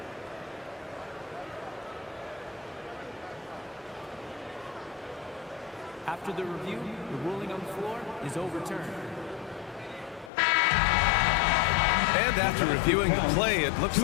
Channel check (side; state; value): right; drops out; at 10.3 s